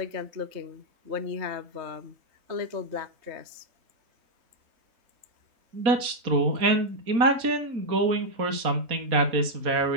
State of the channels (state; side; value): late; left; 4.2 ms